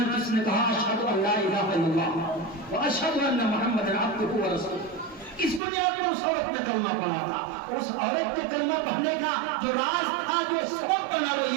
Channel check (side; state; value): left; drops out; at 5.6 s